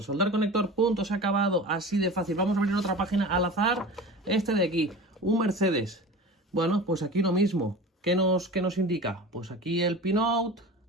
conector, punto, se ha acabado, así de fácil. Vamos a abrir otra página al azar. Este de aquí, un Mercedes. Bueno, pues aquí lo mismo. ¿Qué nos indica? Pues aquí el pinout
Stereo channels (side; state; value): both; normal; correlation 0.35